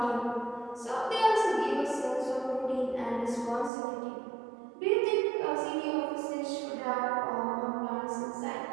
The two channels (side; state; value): left; drops out; at 3.7 s